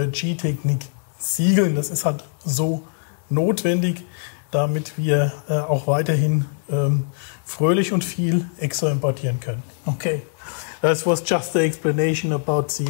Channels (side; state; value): right; silent; digital silence